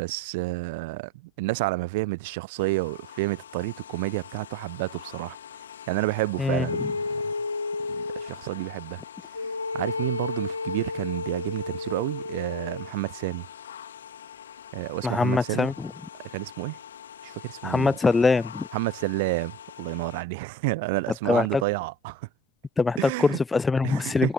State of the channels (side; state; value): both; normal; correlation 0.30